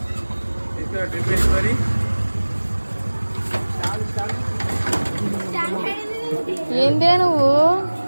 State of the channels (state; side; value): inverted; both; correlation -1.00